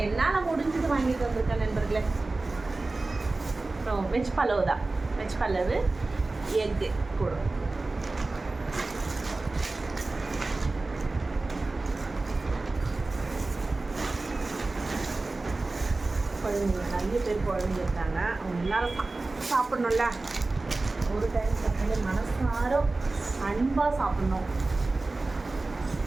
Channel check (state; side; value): quieter; left; 3.3 dB